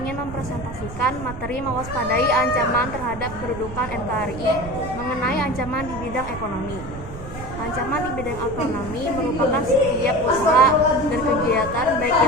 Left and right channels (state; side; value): noise; right; rumble, 11 dB below the sound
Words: mempresentasikan materi mewaspadai ancaman terhadap kedudukan NKRI mengenai ancaman di bidang ekonomi. Ancaman di bidang ekonomi merupakan setiap usaha dan kegiatan baik